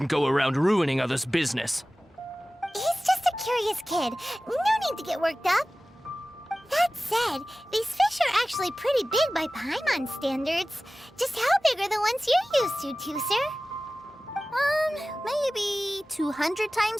go around ruining others' business. He's just a curious kid. No need to get worked up. That said, these fish are actually pretty big by Paimon standards. Just how big are the ones you're used to, Tusser? Maybe 200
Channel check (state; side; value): normal; both; correlation 0.97